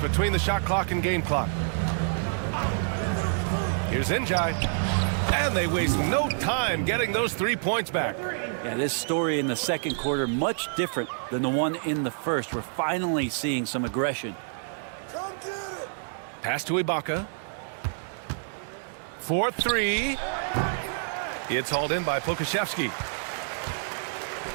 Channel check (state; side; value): silent; left; 60 dB below the other